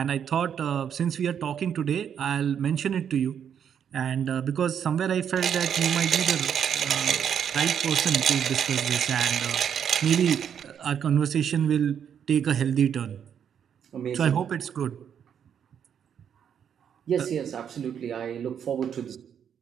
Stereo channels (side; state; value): left; quieter; 8.3 dB